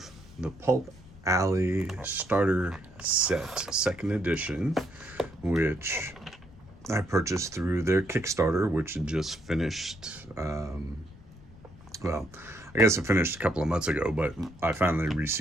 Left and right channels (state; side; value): noise; left; rumble, 21 dB below the sound